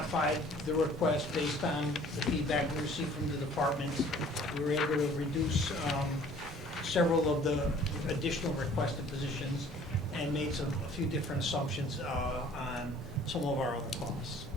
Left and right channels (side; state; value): both; normal; correlation 0.53